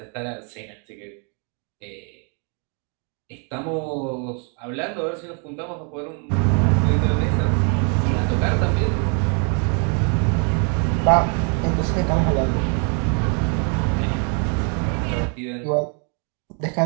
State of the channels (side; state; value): left; quieter; 38.8 dB